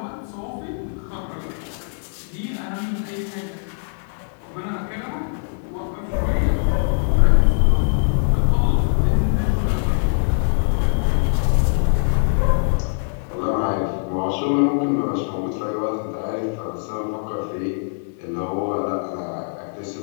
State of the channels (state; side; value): silent; right; 59 dB below the other